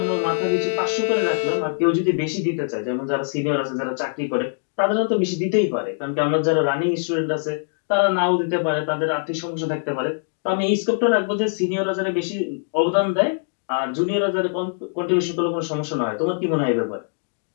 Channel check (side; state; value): right; silent; digital silence